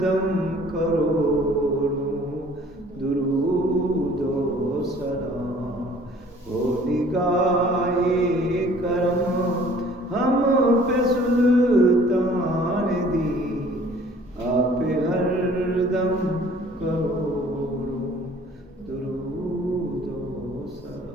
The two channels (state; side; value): normal; both; correlation 0.54